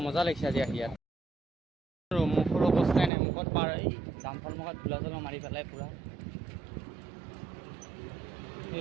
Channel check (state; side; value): drops out; left; at 3.1 s